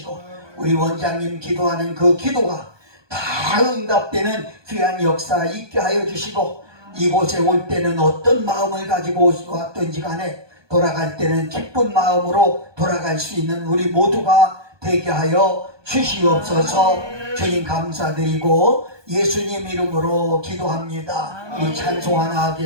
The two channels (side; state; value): left; late; 1.2 ms